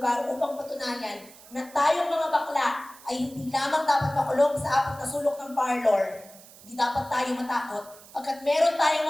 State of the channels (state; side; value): noise; right; hiss, 21 dB below the sound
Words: upang patunayan na tayong mga bakla ay hindi lamang dapat makulong sa 4 na sulok ng parlor. Hindi dapat tayo matakot pagkat meron tayong